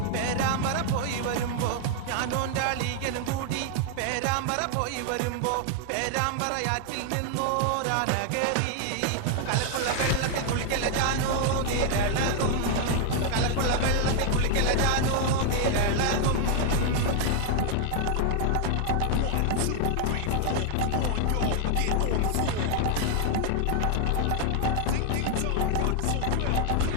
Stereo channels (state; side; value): different; both; correlation 0.00